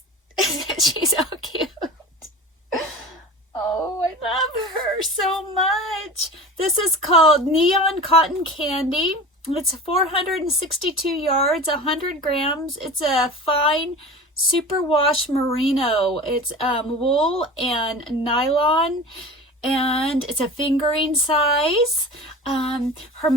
She's so cute. This is called Neon Cotton Candy. It's 462 yards, 100 grams. It's a fine superwash merino. It's wool and nylon, and it's a fingering size. Her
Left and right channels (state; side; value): normal; both; correlation 0.35